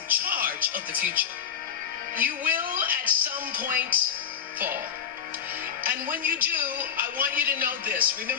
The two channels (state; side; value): quieter; right; 8.1 dB